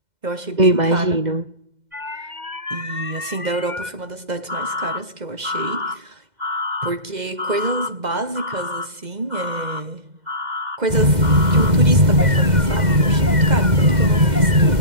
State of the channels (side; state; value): left; late; 2.0 ms